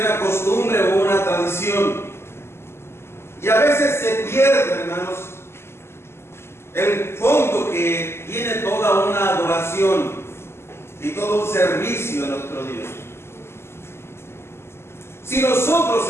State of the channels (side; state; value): right; late; 0.12 ms